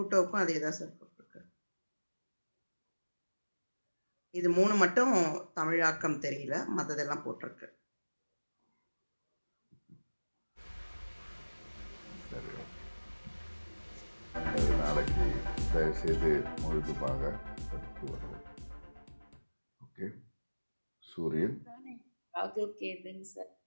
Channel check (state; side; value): inverted; both; correlation -1.00